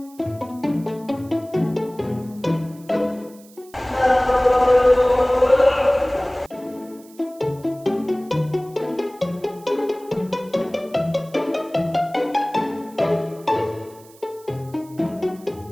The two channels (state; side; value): noise; right; hiss, 25 dB below the sound